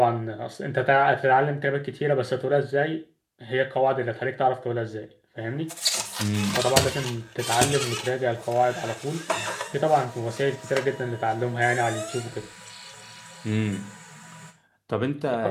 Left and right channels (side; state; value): both; identical; correlation 1.00